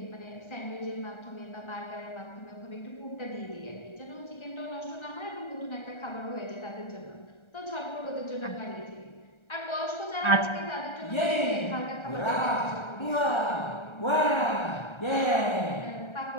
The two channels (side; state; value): right; late; 1.3 ms